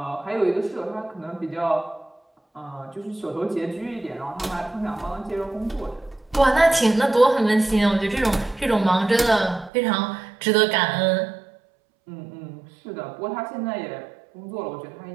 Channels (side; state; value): left; drops out; at 9.7 s